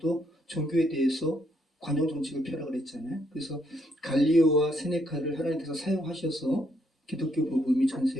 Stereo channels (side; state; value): both; normal; correlation 0.73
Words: 종교에 대해서 관용 정책을 펴라고 그랬잖아요. 그래서 갈리오와 세네카를 하나님께서 사용하셔서 기독교 복음이 전